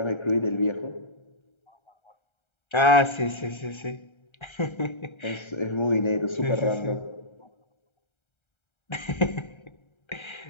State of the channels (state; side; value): late; right; 1.3 ms